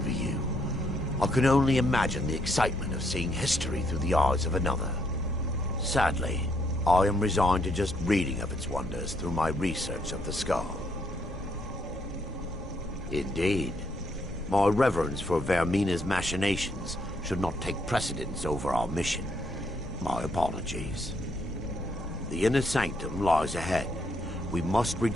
you. I can only imagine the excitement of seeing history through the eyes of another. Sadly, I am resigned to just reading of its wonders through my research of the skull. Indeed. My reverence for Vermina's machinations should not take precedence over our mission. My apologies. The inner sanctum lies ahead. We must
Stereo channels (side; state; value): both; normal; correlation 0.73